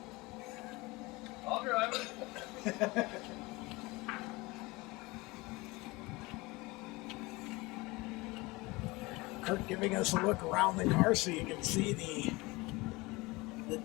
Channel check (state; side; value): quieter; right; 23.0 dB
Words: I'll drive it. Kurt giving us a look around the car so you can see the